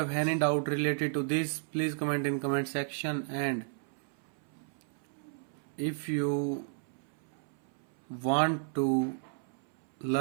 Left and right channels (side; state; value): left; silent; 56 dB below the other